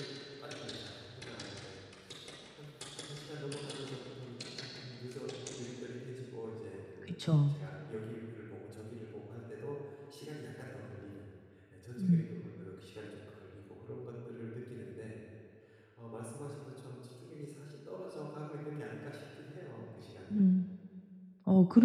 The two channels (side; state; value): both; identical; correlation 1.00